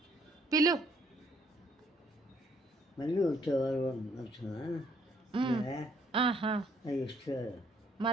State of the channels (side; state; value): both; normal; correlation 0.67